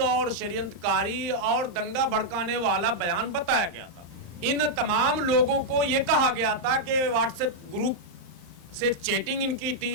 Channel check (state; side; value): late; left; 34 ms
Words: और षड्यंत्रकारी और दंगा भड़काने वाला बयान बताया गया था। इन तमाम लोगों को यह कहा गया था कि व्हाट्सएप ग्रुप से चैटिंग इनकी